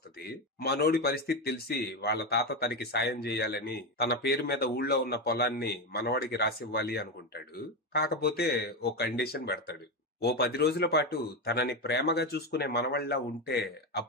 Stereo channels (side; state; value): both; normal; correlation 0.13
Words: మనోడి పరిస్థితి తెలిసి వాళ్ళ తాత తనకి సాయం చేయాలని తన పేరు మీద ఊళ్ళో ఉన్న పొలాన్ని మనవాడికి రాసివ్వాలి అనుకుంటాడు. కాకపోతే ఓ కండిషన్ పెడతాడు. ఓ 10 రోజుల పాటు తనని ప్రేమగా చూసుకునే మనవళ్ళ ఉంటే